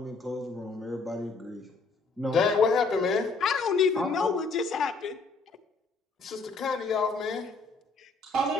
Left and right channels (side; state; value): right; quieter; 4.0 dB